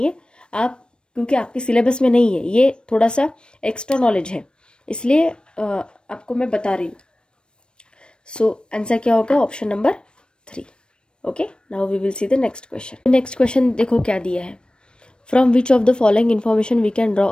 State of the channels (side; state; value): right; late; 0.054 ms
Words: है, आप, क्योंकि आपके सिलेबस में नहीं है, ये थोड़ा सा एक्स्ट्रा नॉलेज है, इसलिए आपको मैं बता रही हूँ। सो आंसर क्या होगा? Option number 3, okay. Now we will see the next question. Next question देखो क्या दिया है, from which of the following information we can draw